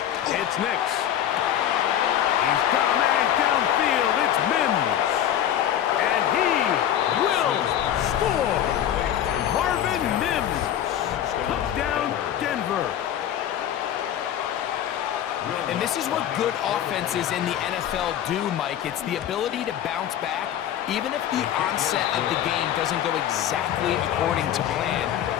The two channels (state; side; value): quieter; right; 10.8 dB